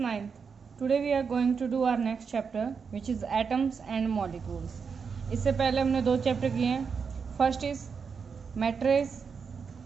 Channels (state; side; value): quieter; left; 5.9 dB